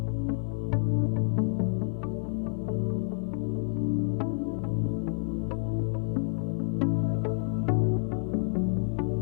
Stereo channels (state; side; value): silent; right; digital silence